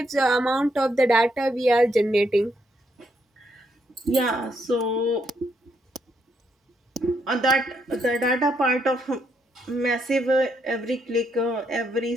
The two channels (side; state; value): both; normal; correlation 0.76